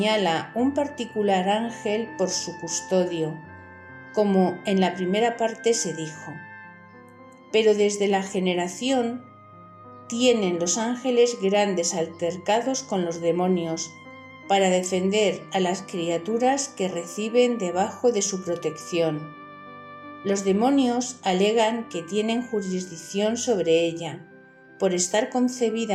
un particular ángel por su custodio, como en la primera parte se dijo. Pero desde la generación tienen los ángeles grandes altercados con los demonios para defender a las criaturas que reciben debajo de su protección. Los demonios alegan que tienen jurisdicción sobre ella, por estar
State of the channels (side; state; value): both; identical; correlation 1.00